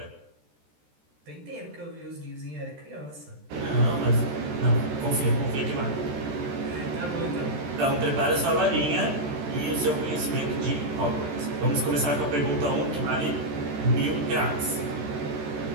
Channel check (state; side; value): late; left; 13 ms